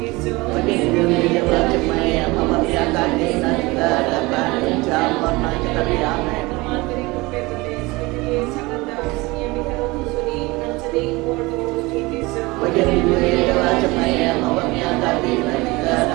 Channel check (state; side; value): quieter; left; 22.8 dB